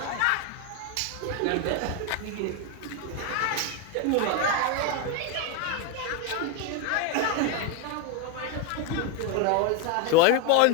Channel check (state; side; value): different; both; correlation 0.02